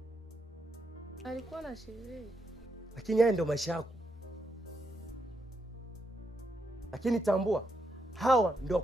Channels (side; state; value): both; normal; correlation 0.81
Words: Alikuwa na sherehe. Lakini haya ndio maisha yako. Lakini tambua, hawa ndio